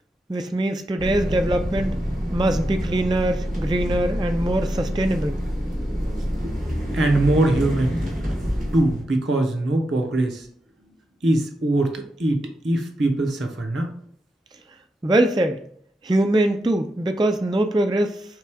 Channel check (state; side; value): normal; both; correlation 0.86